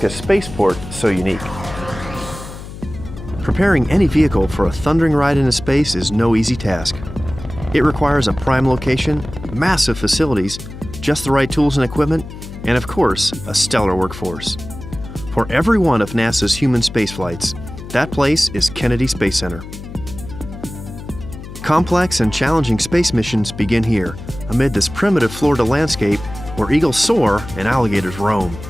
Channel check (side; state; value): left; noise; hum, 13 dB below the sound